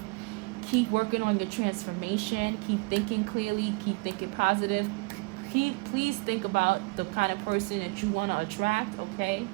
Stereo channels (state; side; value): quieter; left; 28.1 dB